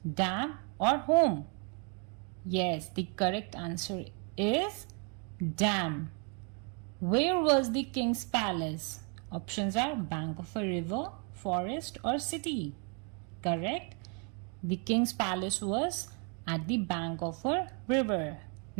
dam or home. Yes, the correct answer is dam. Where was the king's palace? Options are bank of a river, forest or city. Correct. The king's palace was at the bank of a river.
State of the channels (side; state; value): left; quieter; 37.6 dB